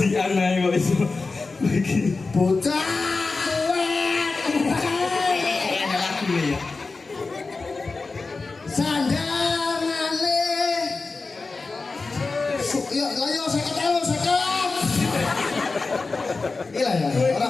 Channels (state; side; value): quieter; right; 3.9 dB